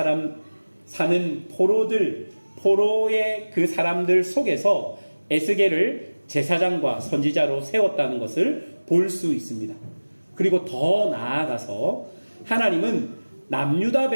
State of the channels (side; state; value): both; inverted; correlation -1.00